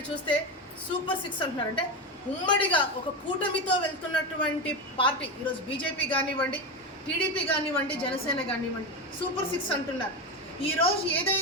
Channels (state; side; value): normal; both; correlation 0.16